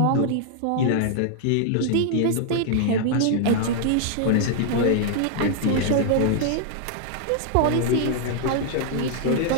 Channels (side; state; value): both; different; correlation 0.00